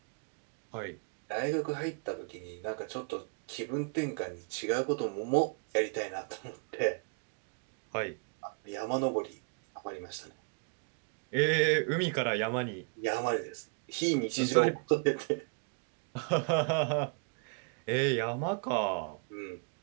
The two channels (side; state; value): left; quieter; 38.2 dB